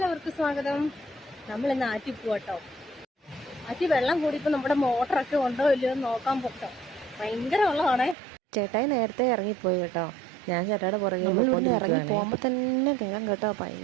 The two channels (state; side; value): drops out; left; at 8.2 s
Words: സ്വാഗതം. നമ്മൾ ഇന്ന് ആറ്റി പോട്ടോ. ആറ്റി വെള്ളം കൂടിയപ്പോൾ നമ്മുടെ മോട്ടറൊക്കെ ഉണ്ടോ ഇല്ലയോ എന്ന് നോക്കാൻ പോട്ടോ. ഭയങ്കര വെള്ളമാണേ. ചേട്ടായി നേരത്തെ ഇറങ്ങിപ്പോയി കേട്ടോ. ഞാൻ ചേട്ടായുടെ പുറകെ ഇറങ്ങി പോകുമ്പോൾ തന്നെ കേൾക്കാം കേട്ടോ,